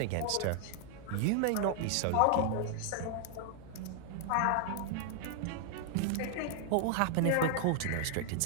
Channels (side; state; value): both; different; correlation 0.00